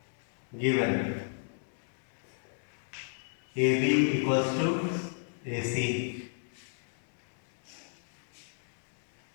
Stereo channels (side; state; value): right; silent; 55 dB below the other